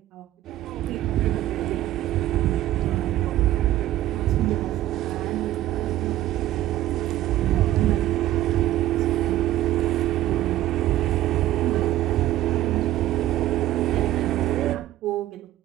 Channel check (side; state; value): left; quieter; 14.1 dB